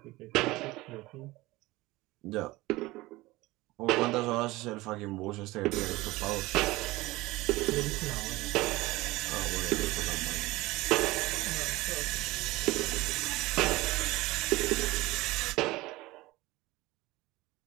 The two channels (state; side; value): quieter; left; 20.0 dB